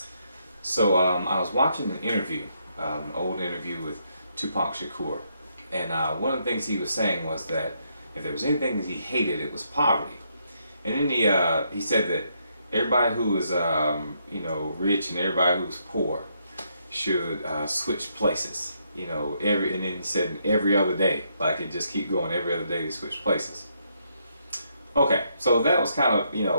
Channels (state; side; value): inverted; both; correlation -0.76